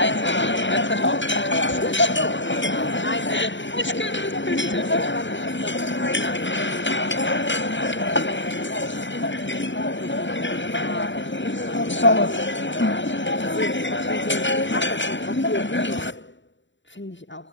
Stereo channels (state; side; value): late; right; 0.54 ms